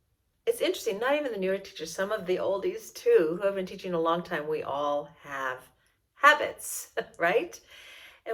it's interesting, not even the newer teachers, some of the oldies too, who have been teaching a long time, we all have habits, right?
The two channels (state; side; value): identical; both; correlation 1.00